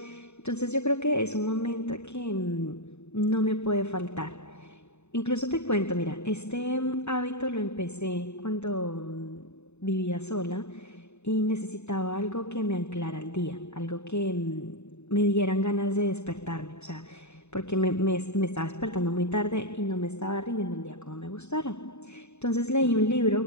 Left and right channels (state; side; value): late; right; 0.82 ms